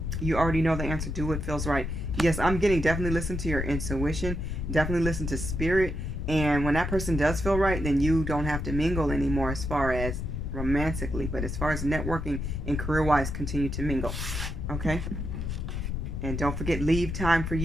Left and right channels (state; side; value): noise; left; rumble, 3 dB below the sound